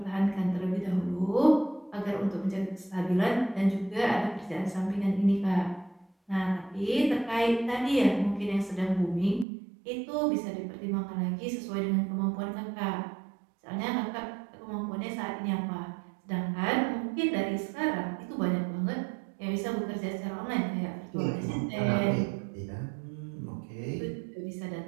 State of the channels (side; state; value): left; drops out; at 9.5 s